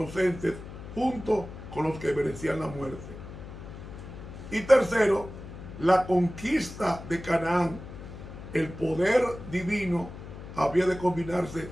junto con los que merecían la muerte. Y tercero, la conquista de Canaán. El poder divino había de combinarse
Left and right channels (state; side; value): noise; left; hum, 12 dB below the sound